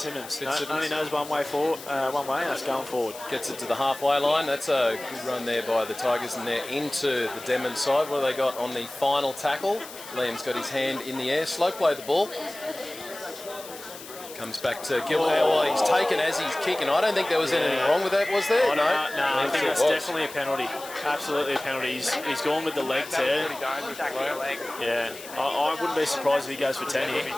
Only knows one way, and that's going forward. Gets it to the halfway line. That's a good run there by the Tigers, and they're into the Denman side. What have they got on the final tackle? Liam's got his hand in the air. Slow play the ball. Comes back to Gilbert. Well, he's taken as he's kicking. I don't think there was anything wrong with that, was there? No, I think that's definitely a penalty. Absolutely a penalty. He's gone with the legs there. Yeah, I wouldn't be surprised if he goes for 10 here.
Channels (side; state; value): left; noise; hiss, 15 dB below the sound